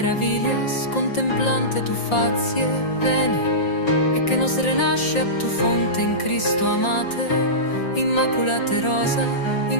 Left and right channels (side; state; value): right; late; 5.7 ms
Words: contemplante tu fazie, veni, e che nos renasce a tu fonte in Cristo amate, immaculate rosa,